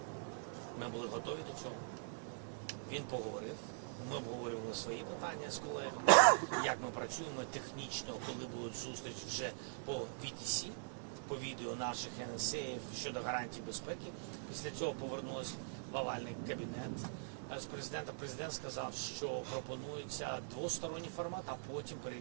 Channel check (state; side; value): silent; left; digital silence